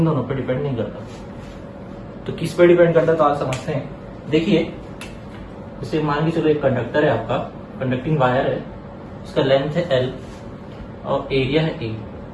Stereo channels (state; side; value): identical; both; correlation 1.00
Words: दोनों पर डिपेंड नहीं करता। तो किस पे डिपेंड करता है तो आज समझते हैं। देखिए जैसे मान के चलो एक कंडक्टर है आपका, कंडक्टिंग वायर है, उसका लेंथ है L और एरिया है A,